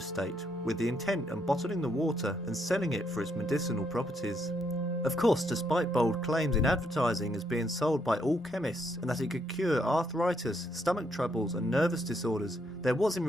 with the intent of bottling the water and selling it for its medicinal properties. Of course, despite bold claims in advertising as being sold by all chemists and that it could cure arthritis, stomach troubles and nervous disorders, there was in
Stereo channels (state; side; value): normal; both; correlation 0.75